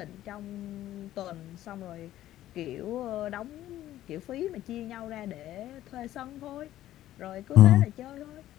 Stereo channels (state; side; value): quieter; right; 13.6 dB